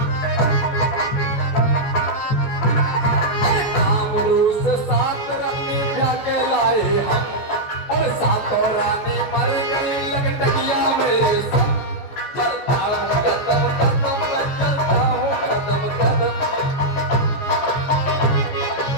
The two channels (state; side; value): late; right; 14 ms